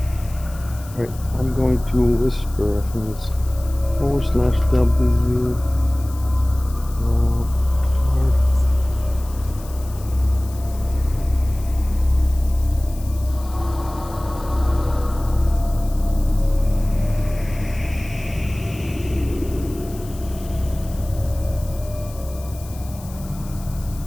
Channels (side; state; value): left; noise; hiss, 20 dB below the sound